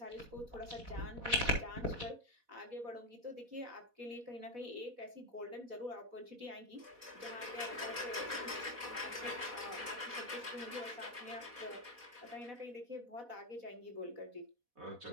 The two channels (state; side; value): late; left; 4.1 ms